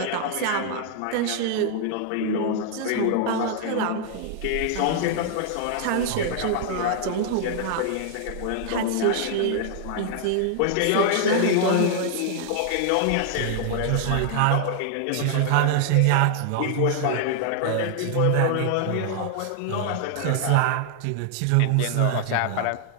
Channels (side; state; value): both; different; correlation 0.00